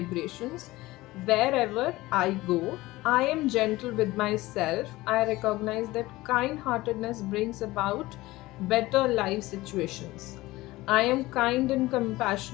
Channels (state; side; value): quieter; right; 18.8 dB